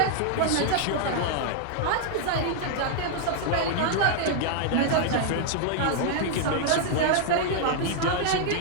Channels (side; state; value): both; different; correlation 0.00